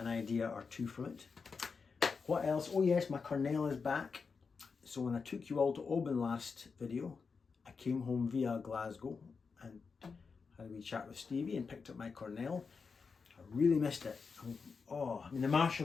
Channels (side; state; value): right; quieter; 5.1 dB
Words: idea or two from it. What else? Oh yes, my Cornell is back. So when I took you all to Oban last video, I came home via Glasgow and had a wee chat with Stevie and picked up my Cornell. I really missed it. I mean the